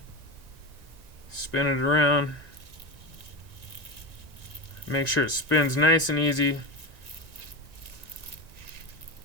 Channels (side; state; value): left; late; 1.9 ms